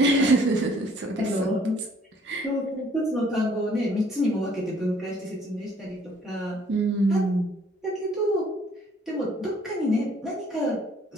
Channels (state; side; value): normal; both; correlation 0.60